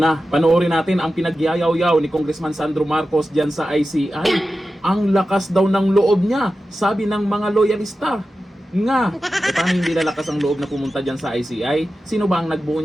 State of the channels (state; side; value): normal; both; correlation 0.93